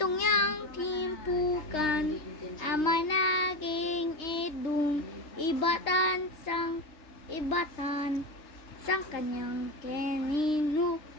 yang timpukan, ama naging idung, ibatan, sang kanyang kenino.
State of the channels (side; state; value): right; late; 3.2 ms